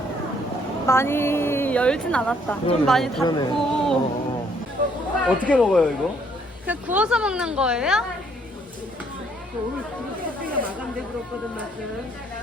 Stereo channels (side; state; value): both; normal; correlation 0.66